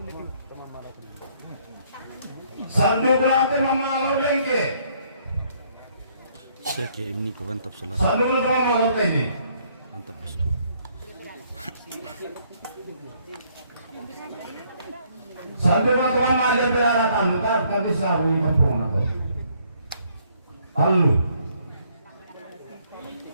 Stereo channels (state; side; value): inverted; both; correlation -0.66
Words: Sandukan Pemamalo Lengke. Saya kayak ini kau mantap salah. Sandukan Pemamalo Tengke. Mantap bosku. Sandukan Pemamalo Berada Tanduk. Tapi di selalu di kampung aku. Halo.